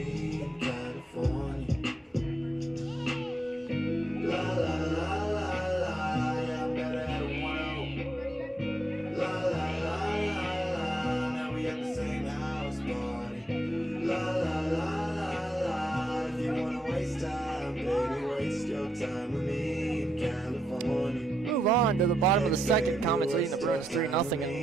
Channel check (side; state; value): both; normal; correlation 0.81